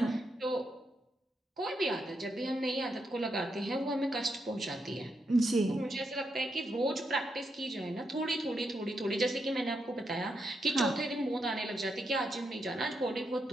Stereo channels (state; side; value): normal; both; correlation 0.82